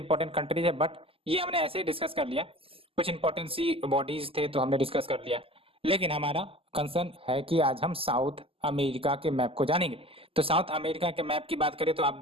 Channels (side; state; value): left; late; 0.27 ms